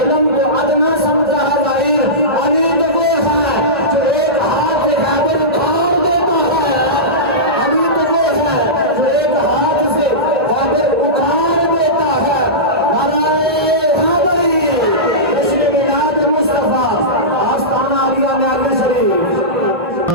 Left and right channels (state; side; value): normal; both; correlation -0.17